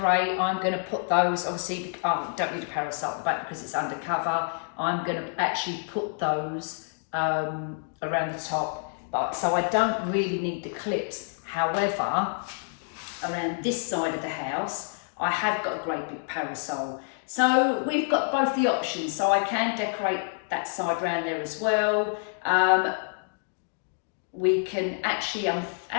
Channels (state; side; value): silent; right; 60 dB below the other